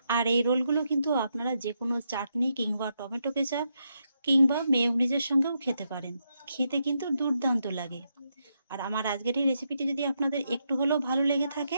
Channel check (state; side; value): inverted; both; correlation -0.81